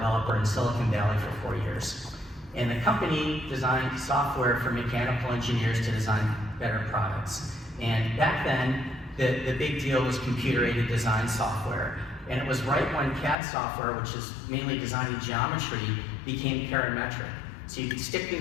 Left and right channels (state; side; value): drops out; right; at 13.4 s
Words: in Silicon Valley for 4 years. And the company designed software for mechanical engineers to design better products. And back then, the big deal was computer-aided design software. And it was right when CAD software, which is mainly designing geometry, became parametric. So you could stick